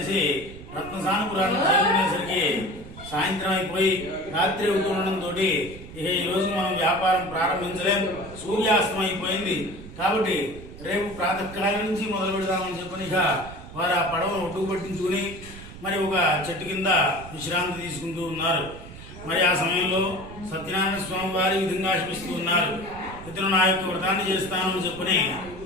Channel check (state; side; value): noise; right; rumble, 15 dB below the sound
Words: రత్నసానపురాన్ని చేరుకునేసరికి సాయంత్రం అయిపోయి రాత్రి అవుతుండడంతో ఇక ఈ రోజు మనం వ్యాపారం ప్రారంభించలేం, సూర్యాస్తం అయిపోయింది, కాబట్టి రేపు ప్రాతకాలం నుంచి మొదలు పెడదామని చెప్పని ఇక వారు ఆ పడవను ఒడ్డుకు పట్టించుకుని మరి ఒక చెట్టు కింద విశ్రాంతి తీసుకుంటూ ఉన్నారు. మరి ఆ సమయంలో సత్యనారాయణ స్వామి వారి విధంగా ఆశిస్తూ ఉన్నారు. ఇతను నా యొక్క వ్రతాన్ని చేస్తాను అని చెప్పని